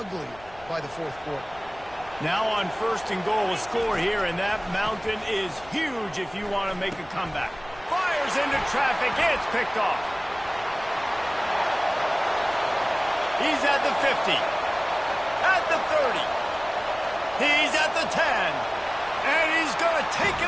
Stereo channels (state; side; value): noise; left; rumble, 23 dB below the sound